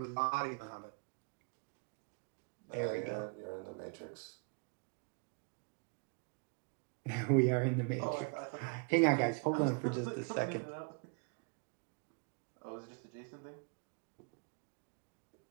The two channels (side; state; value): left; quieter; 34.9 dB